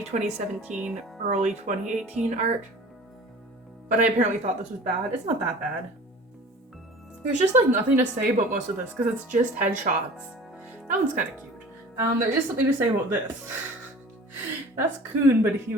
2017, early 2018 art. But I apparently thought this was bad. It's not that bad. There's just like nothing to say about most of this because it's just headshots. That one's kind of cute. There is something to say about this. That's Kun, but he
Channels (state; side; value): normal; both; correlation 0.42